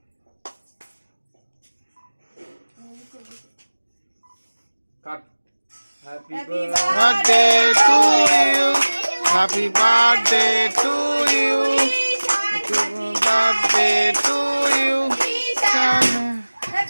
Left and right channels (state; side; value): inverted; both; correlation -1.00